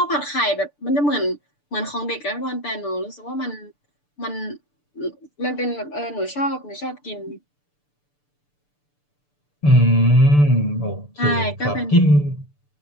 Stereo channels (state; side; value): late; right; 6.8 ms